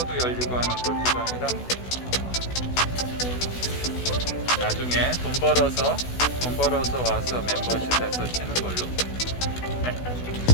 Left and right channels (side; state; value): right; late; 16 ms